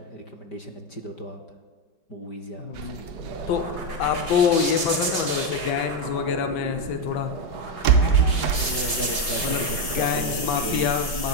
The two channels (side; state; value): right; late; 5.2 ms